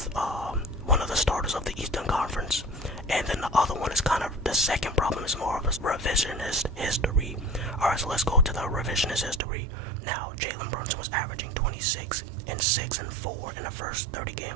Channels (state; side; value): drops out; left; at 9.4 s